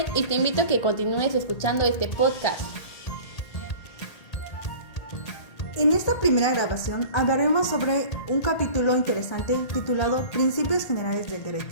y te invito a que continúes escuchando este podcast. En esta primera grabación hablaremos sobre un capítulo interesante titulado Principios Generales del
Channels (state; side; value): late; right; 1.8 ms